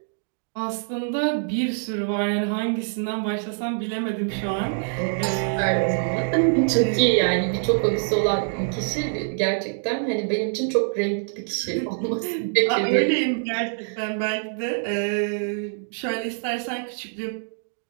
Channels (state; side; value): silent; left; digital silence